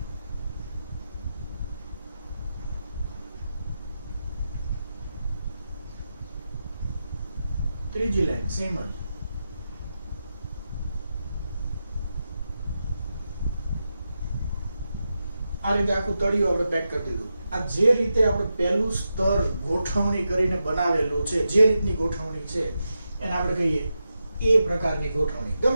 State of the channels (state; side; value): inverted; both; correlation -0.88